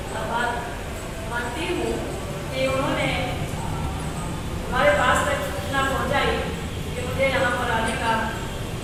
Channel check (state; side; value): identical; both; correlation 1.00